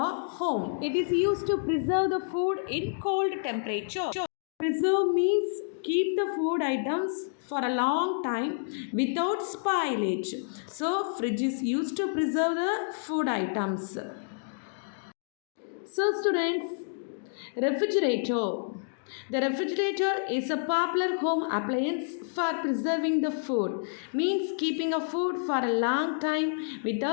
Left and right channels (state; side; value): silent; right; digital silence